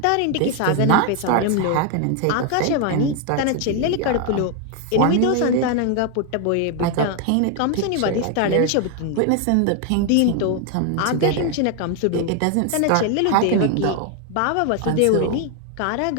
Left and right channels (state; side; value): different; both; correlation 0.01